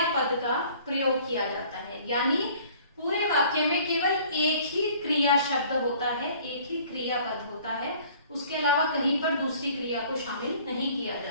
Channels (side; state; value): both; inverted; correlation -0.53